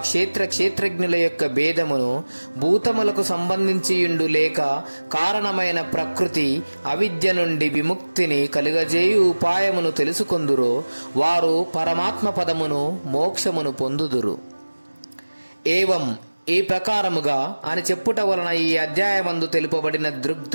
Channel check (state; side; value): inverted; both; correlation -1.00